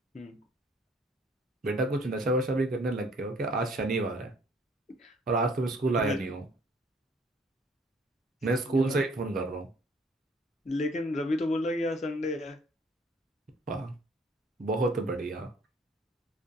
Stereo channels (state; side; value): normal; both; correlation 0.59